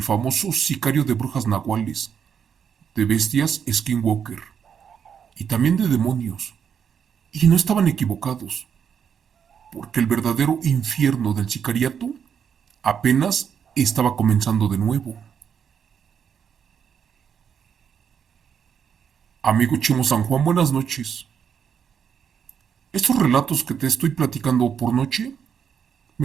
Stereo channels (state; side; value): quieter; left; 7.6 dB